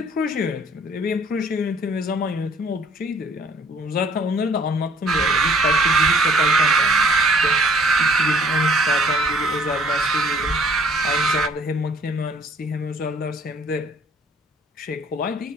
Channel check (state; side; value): normal; both; correlation 0.57